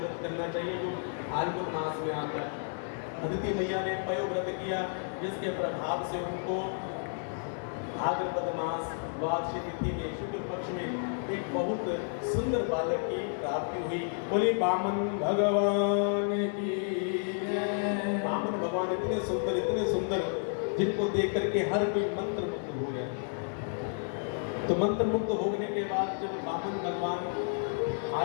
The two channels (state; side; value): silent; right; digital silence